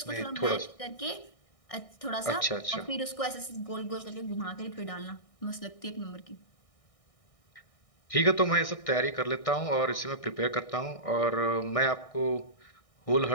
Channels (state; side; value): late; right; 1.6 ms